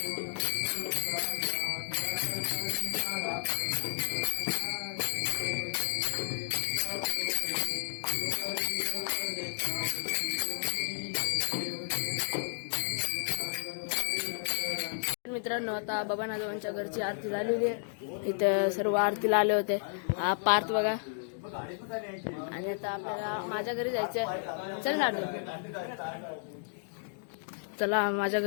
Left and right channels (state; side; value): silent; right; digital silence